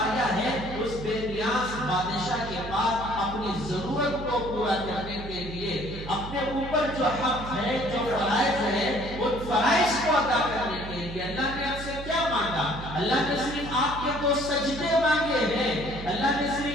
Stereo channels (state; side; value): noise; right; hum, 11 dB below the sound